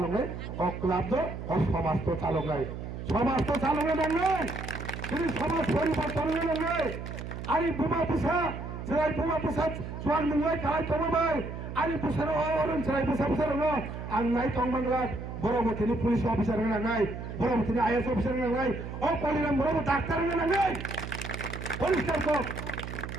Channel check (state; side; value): noise; right; hum, 8 dB below the sound